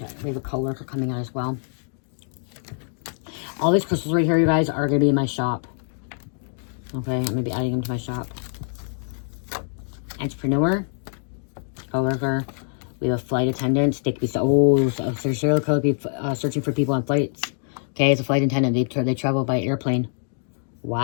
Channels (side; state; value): right; silent; 62 dB below the other